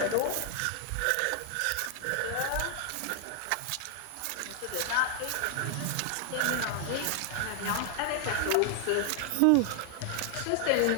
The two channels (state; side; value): different; both; correlation 0.00